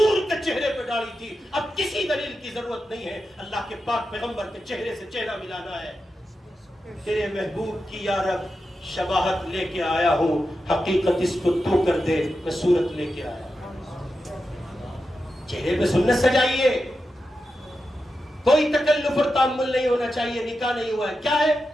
کے چہرے پہ داڑھی تھی، اب کسی دلیل کی ضرورت نہیں ہے۔ اللہ کے پاک پیغمبر کے چہرے سے چہرہ ملانا ہے۔ تیرے محبوب کی یا رب شباہت لے کے آیا ہوں، حقیقت اس کو تو کر دے، میں صورت لے کے آیا ہوں۔ چہرے پہ سنت سجائیے، کوئی تکلف اور تعامل نہیں ہونا چاہیے۔ نکاح نہیں ہوا ہے، کیا ہے؟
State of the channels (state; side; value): normal; both; correlation 0.90